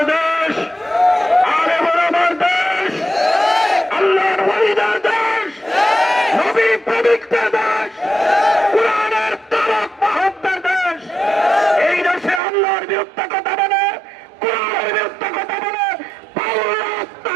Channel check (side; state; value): left; drops out; at 12.4 s